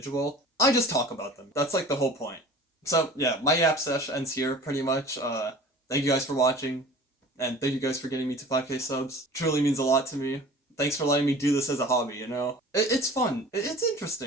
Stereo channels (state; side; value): normal; both; correlation 0.43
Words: I just talk about them. That's like the whole point. So yeah, my yap sesh ends here pretty much. Thank you guys for watching, and thank you guys for getting me to 5K subs. Truly means a lot to me. Thanks for letting me do this as a hobby, you know? It's fun. It's